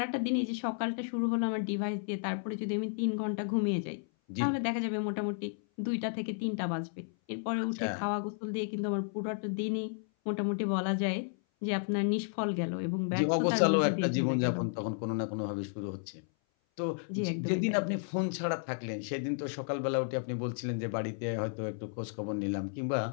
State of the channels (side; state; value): right; silent; 56 dB below the other